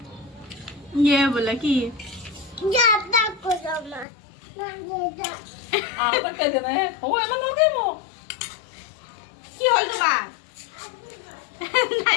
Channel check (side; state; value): right; drops out; at 4.0 s